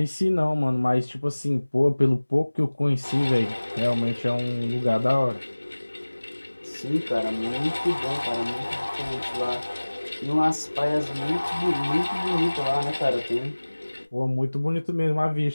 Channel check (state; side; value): inverted; both; correlation -1.00